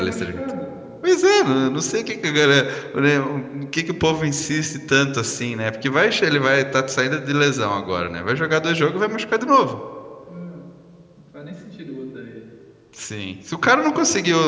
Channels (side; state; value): both; identical; correlation 1.00